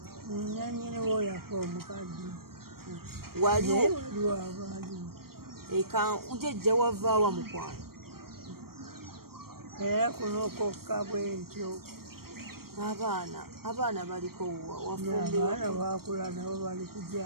nanyini woyafa omukadde waliwo abaaliwo eka ujejja wavaawa mukwano era kuno kokka bwentyo abaana baliko abaana bakula nabo bali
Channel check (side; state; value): left; late; 0.94 ms